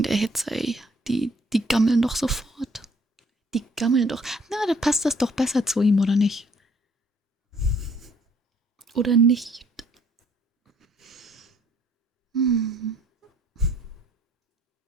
der Hitze, ey. Die gammeln doch sofort. Die gammeln doch. Na, da passt das doch besser zu ihm, oder nicht? Oder nicht?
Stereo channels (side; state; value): both; normal; correlation 0.62